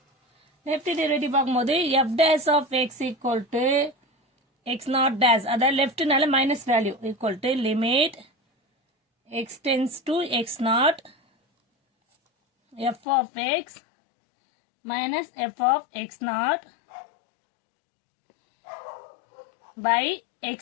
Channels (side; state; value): right; drops out; at 13.0 s